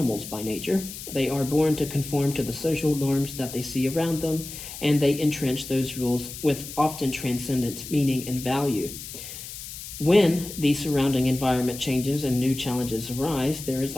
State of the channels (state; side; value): noise; left; hiss, 11 dB below the sound